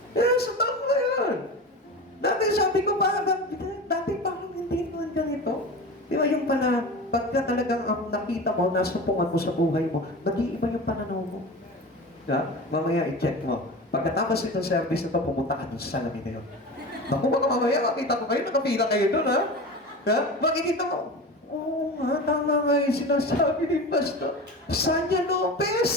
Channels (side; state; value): both; normal; correlation 0.30